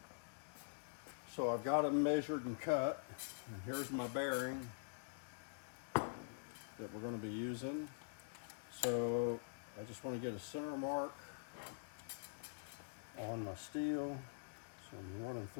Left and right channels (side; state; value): right; silent; digital silence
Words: So I've got them measured and cut, and here's my bearing that we're going to be using. So I just want to get a center mark on my steel. So I'm running